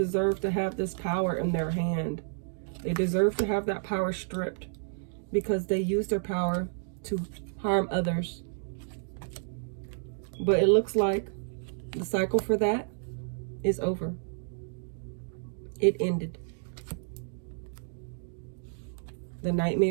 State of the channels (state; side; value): silent; left; digital silence